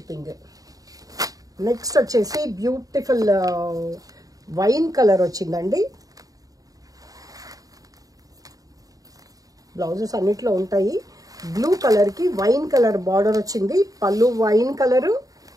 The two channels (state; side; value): late; left; 0.17 ms